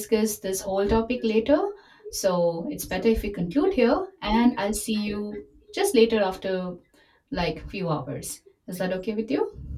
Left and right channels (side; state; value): both; identical; correlation 1.00